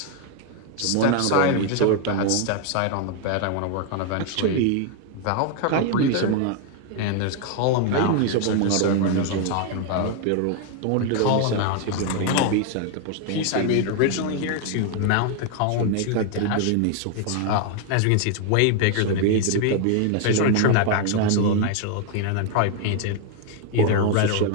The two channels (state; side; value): different; both; correlation 0.00